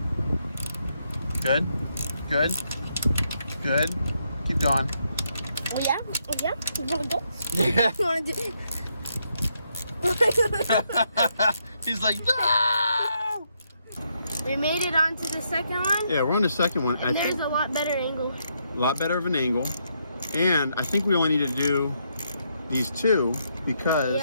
Good. Good. Good. Keep going. Oh yeah? Oh yeah? You wanna go? Yeah. You wanna do He's like, no! We made it onto the second one. Yeah, we're on the second one. And there's a lot better angle. A lot better of an angle. And I think we only need to do these two because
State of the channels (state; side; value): inverted; both; correlation -0.78